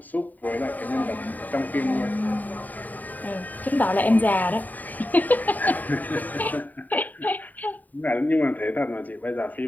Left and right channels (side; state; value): right; late; 0.083 ms